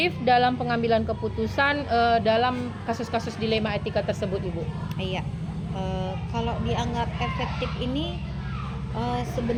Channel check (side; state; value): both; identical; correlation 1.00